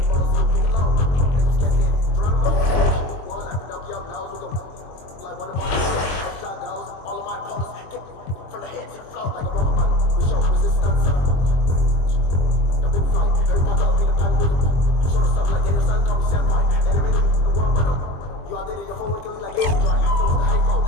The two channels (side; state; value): right; late; 22 ms